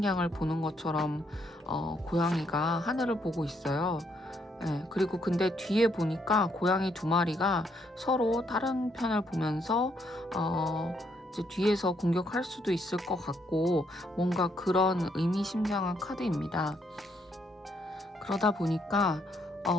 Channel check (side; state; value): both; normal; correlation 0.73